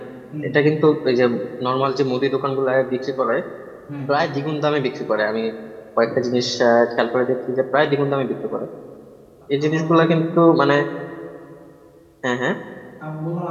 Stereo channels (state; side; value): identical; both; correlation 1.00